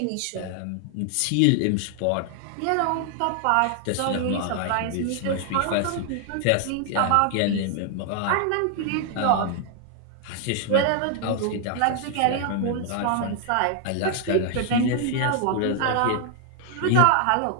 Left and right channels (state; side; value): different; both; correlation 0.00